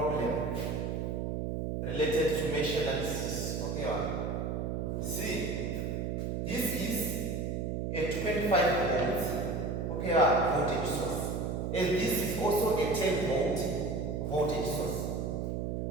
related to mesh analysis. Okay, see, this is a 25 volts voltage source, and this is also a 10 volt voltage source.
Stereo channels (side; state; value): right; noise; hum, 1 dB below the sound